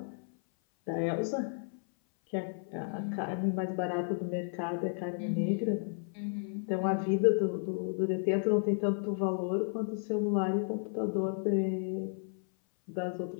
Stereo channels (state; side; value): silent; right; 56 dB below the other